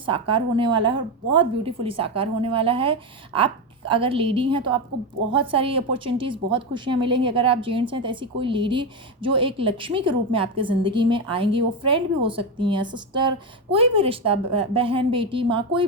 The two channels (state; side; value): normal; both; correlation 0.12